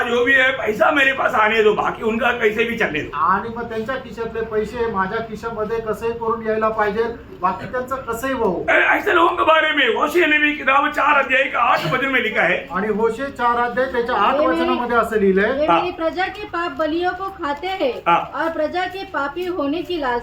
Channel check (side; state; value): both; identical; correlation 1.00